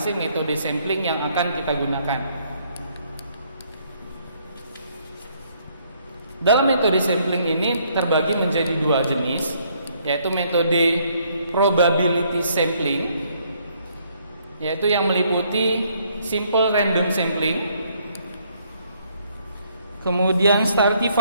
metode sampling yang akan kita gunakan. Dalam metode sampling ini terbagi menjadi dua jenis, yaitu metode probability sampling, yaitu yang meliputi simple random sampling, kemudian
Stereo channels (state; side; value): inverted; both; correlation -0.67